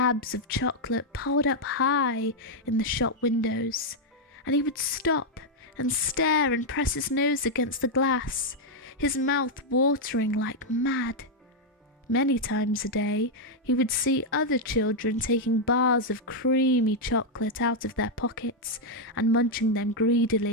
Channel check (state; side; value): normal; both; correlation -0.01